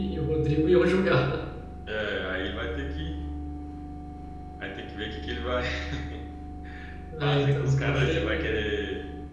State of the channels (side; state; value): both; identical; correlation 1.00